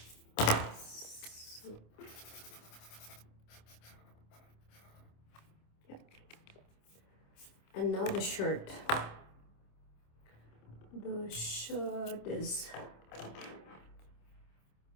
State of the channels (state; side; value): late; right; 26 ms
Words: So, yeah. And now the shirt. The shirt is